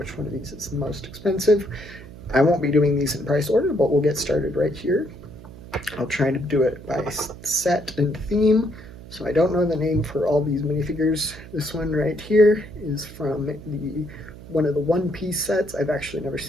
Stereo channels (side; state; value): right; noise; hum, 16 dB below the sound